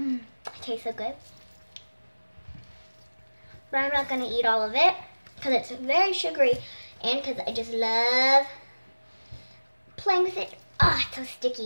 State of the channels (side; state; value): both; inverted; correlation -1.00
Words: tastes so good. But I'm not going to eat all of it because it's very sugary and because I just love playing with it. Ah, it's so